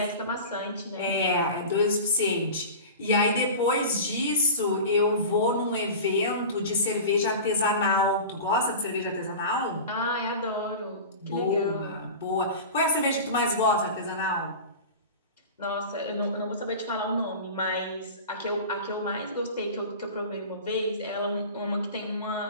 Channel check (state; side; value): inverted; both; correlation -0.32